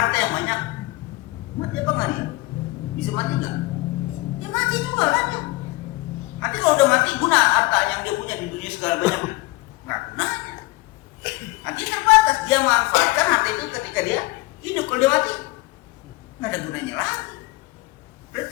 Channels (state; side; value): quieter; right; 21.9 dB